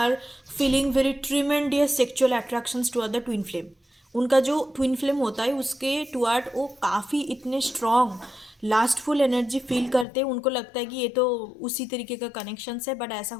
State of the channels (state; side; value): drops out; right; at 10.1 s